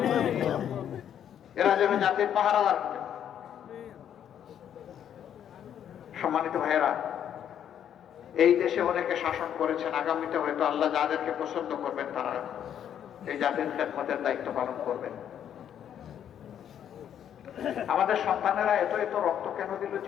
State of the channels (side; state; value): right; quieter; 9.5 dB